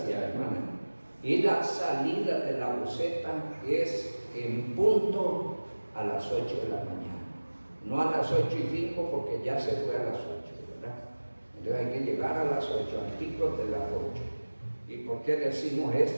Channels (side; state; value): both; inverted; correlation -1.00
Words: hermana. Y la salida de la buceta es en punto a las 8 de la mañana. No a las 8:05 porque ya se fue a las 8, ¿verdad? Entonces hay que llegar a las 8, al tico de las 8. ¿Y por qué decimos